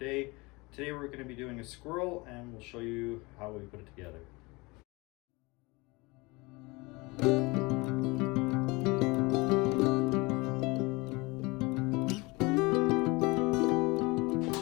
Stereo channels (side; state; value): right; quieter; 25.0 dB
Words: Today we're going to be doing a squirrel, and we'll show you how we put it together.